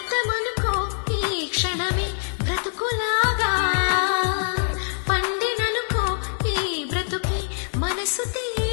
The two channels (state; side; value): silent; right; 63 dB below the other